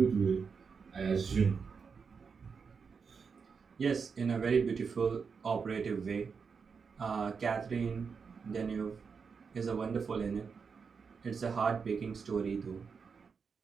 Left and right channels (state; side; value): quieter; left; 5.7 dB